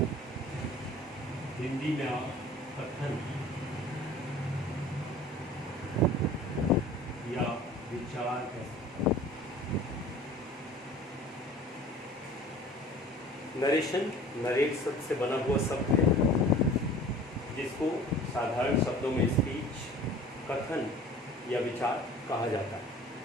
Hindi में आप कथन या विचार कह सकते हैं। Narration, narrate शब्द से बना हुआ शब्द है, जिसको साधारण शब्दों में स्पीच, कथन या विचार कहा जाता है।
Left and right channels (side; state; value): both; normal; correlation 0.45